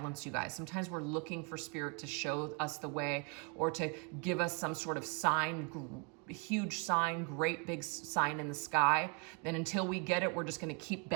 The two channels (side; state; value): left; quieter; 34.1 dB